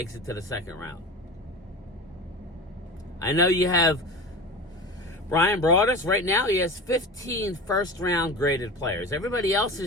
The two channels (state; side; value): normal; both; correlation 0.31